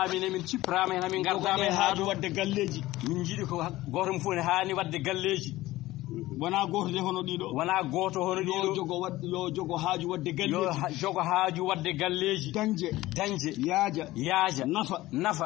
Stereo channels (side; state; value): right; quieter; 17.3 dB